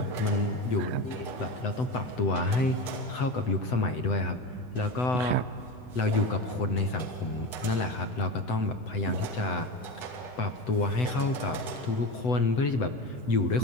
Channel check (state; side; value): late; right; 8.0 ms